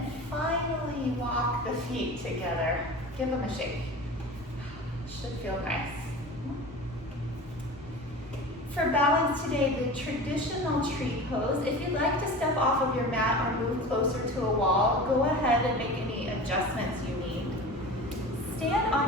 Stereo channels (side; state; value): both; normal; correlation 0.34